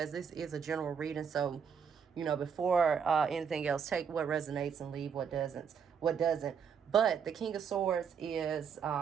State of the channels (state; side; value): quieter; left; 6.9 dB